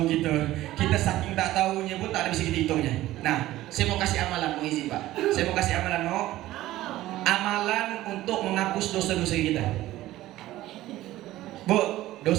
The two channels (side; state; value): left; quieter; 15.6 dB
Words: kita. Kita saking tak tahunya pun tak ada bisa kita hitungnya. Nah, saya mau kasih amalan, mau izin Pak. Saya mau kasih amalan, mau amalan untuk menghapus dosa-dosa kita. Bu,